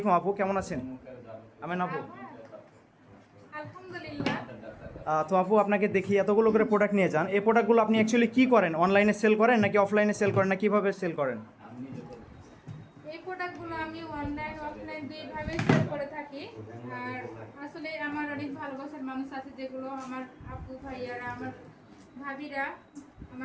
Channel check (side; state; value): both; identical; correlation 1.00